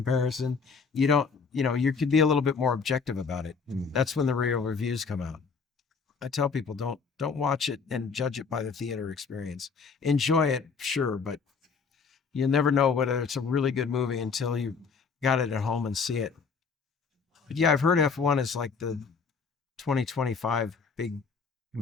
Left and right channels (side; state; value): right; quieter; 5.3 dB